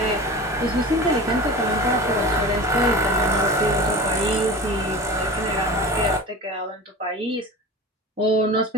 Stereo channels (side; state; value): both; normal; correlation 0.33